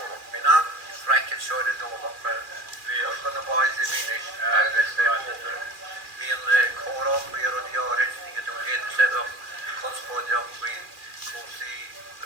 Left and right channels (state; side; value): late; left; 2.4 ms